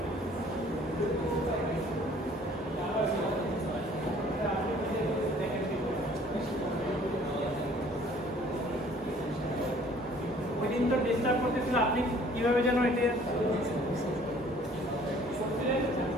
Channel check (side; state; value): both; normal; correlation 0.55